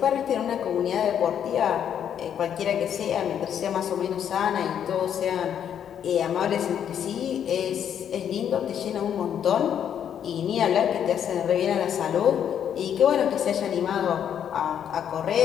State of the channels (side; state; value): right; quieter; 9.0 dB